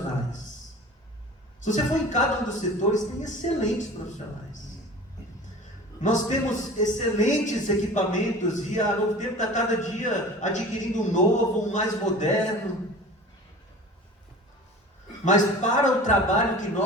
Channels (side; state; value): both; normal; correlation 0.39